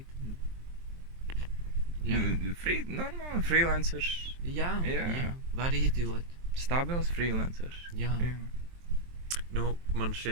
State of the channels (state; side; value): late; left; 23 ms